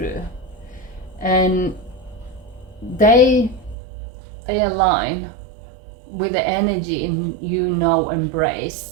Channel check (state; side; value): drops out; left; at 3.8 s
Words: And they align with the energy in you now